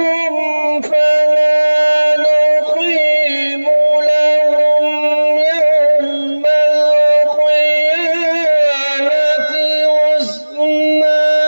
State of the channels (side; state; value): both; inverted; correlation -1.00